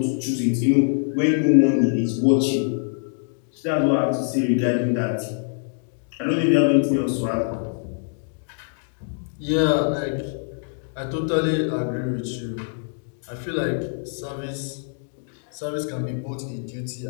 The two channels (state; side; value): silent; right; digital silence